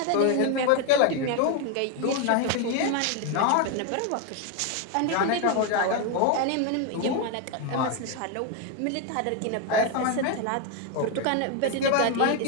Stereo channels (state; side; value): different; both; correlation 0.01